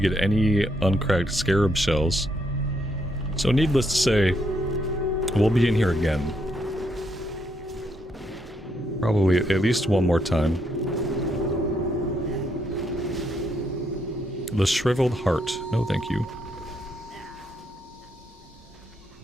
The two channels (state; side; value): normal; both; correlation 0.76